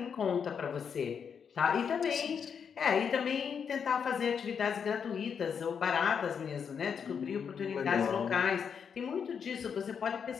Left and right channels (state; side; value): quieter; right; 6.9 dB